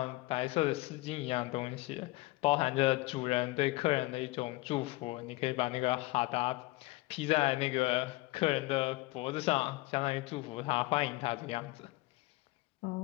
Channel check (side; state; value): right; quieter; 21.0 dB